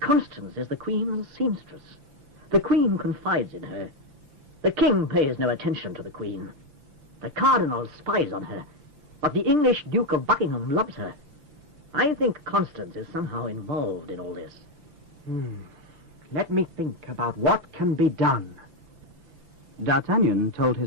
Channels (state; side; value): late; left; 5.9 ms